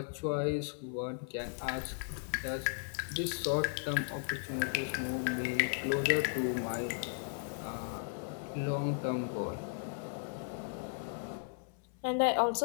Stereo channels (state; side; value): silent; right; 54 dB below the other